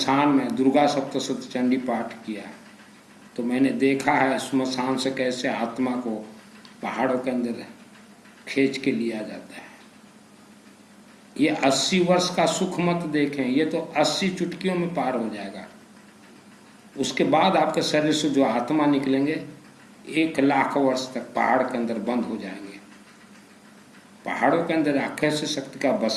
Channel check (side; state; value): both; identical; correlation 1.00